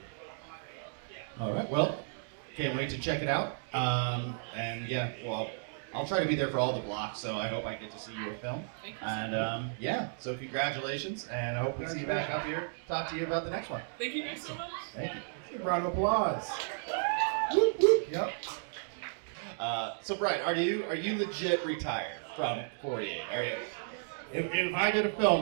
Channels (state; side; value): silent; left; digital silence